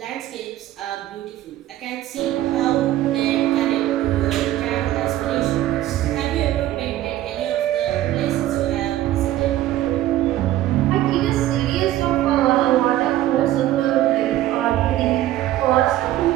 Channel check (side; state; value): left; quieter; 14.0 dB